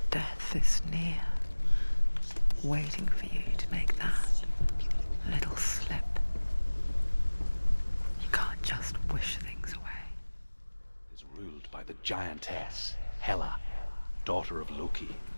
death is near, waiting for you to make that little slip. You can't just wish things away. Is ruled by the giantess, Hela, daughter of Loki.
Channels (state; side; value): inverted; both; correlation -1.00